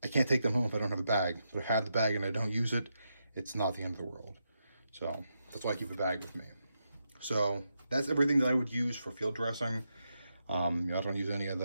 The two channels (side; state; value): both; inverted; correlation -0.84